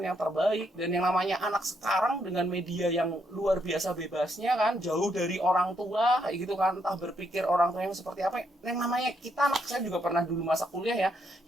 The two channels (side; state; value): both; normal; correlation 0.76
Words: yang terbaik. Dan yang namanya anak sekarang dengan media yang luar biasa bebasnya kan, jauh dari orang tua kayak gitu kan, entah berpikir orang tua yang seperti apa. Yang namanya kita, anak saya juga pernah dulu masa kuliah ya,